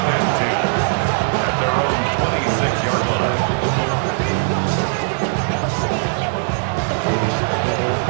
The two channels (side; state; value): left; silent; 66 dB below the other